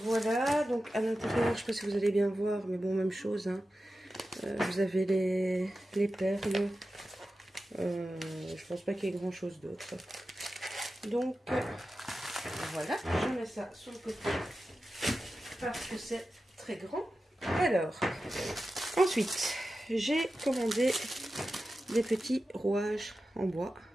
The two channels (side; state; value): both; normal; correlation 0.93